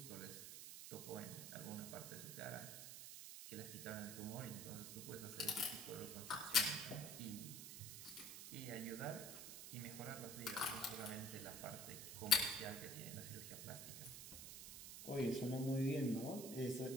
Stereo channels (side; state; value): right; noise; hiss, 8 dB below the sound